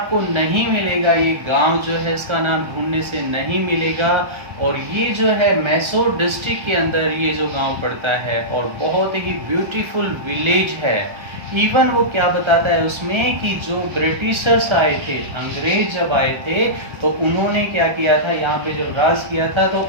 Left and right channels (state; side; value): late; left; 1.3 ms